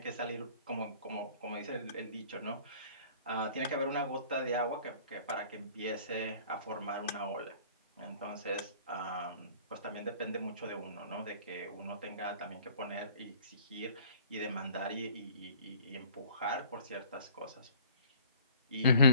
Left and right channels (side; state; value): both; inverted; correlation -0.51